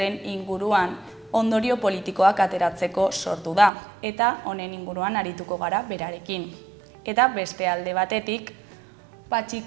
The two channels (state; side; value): drops out; left; at 3.7 s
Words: inguruan ondorio politikoak ateratzeko sortu da eta honen inguruan arituko gara berarekin. Eta beste alde batetik,